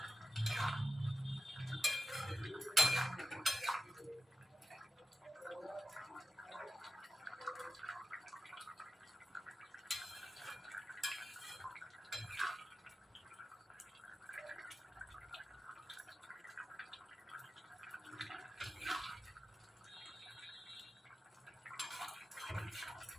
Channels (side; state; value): both; normal; correlation 0.92